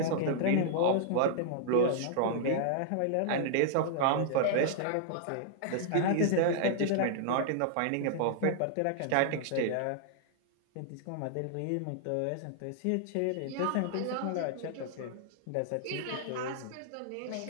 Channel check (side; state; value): both; different; correlation -0.01